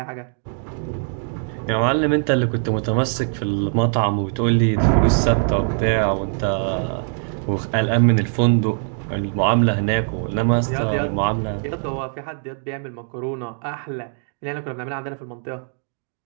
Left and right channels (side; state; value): left; silent; 62 dB below the other